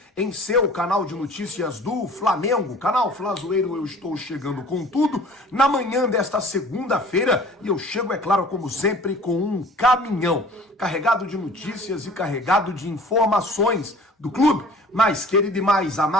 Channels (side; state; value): both; normal; correlation 0.48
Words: em seu canal de notícias do Flamengo, canal Flazoeiro. Eu estou chegando com tudo na manhã desta segunda-feira e eu chego, é claro, como sempre, com um caminhão carregado de notícias e carregado de informações do clube mais querido e mais